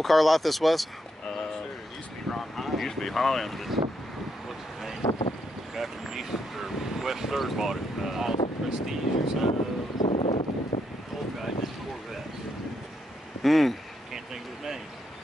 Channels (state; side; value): normal; both; correlation 0.78